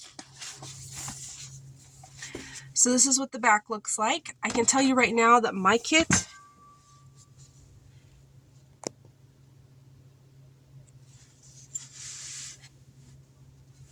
So this is what the back looks like. I can tell you right now that my kit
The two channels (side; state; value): both; identical; correlation 1.00